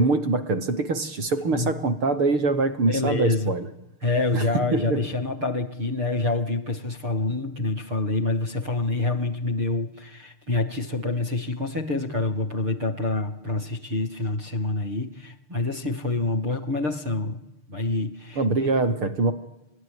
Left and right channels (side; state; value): left; late; 6.7 ms